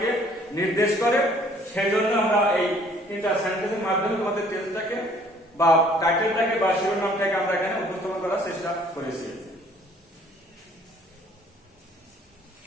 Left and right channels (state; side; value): normal; both; correlation 0.58